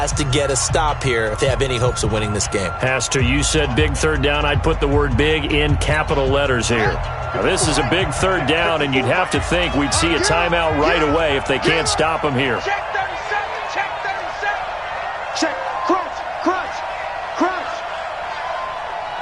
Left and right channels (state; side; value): identical; both; correlation 1.00